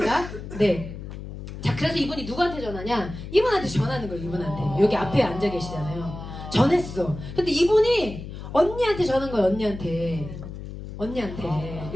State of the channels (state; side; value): noise; left; hum, 10 dB below the sound